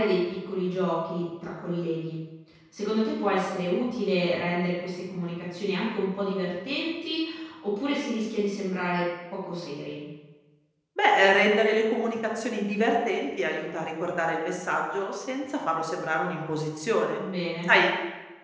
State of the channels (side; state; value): both; identical; correlation 1.00